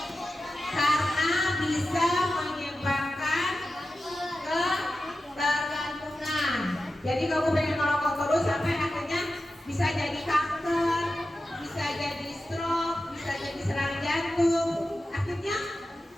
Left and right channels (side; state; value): both; normal; correlation 0.92